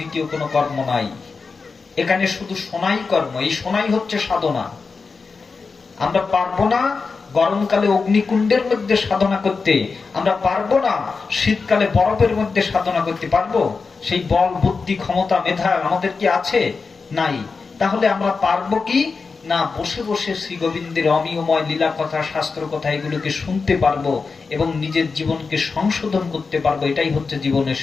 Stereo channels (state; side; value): quieter; right; 4.6 dB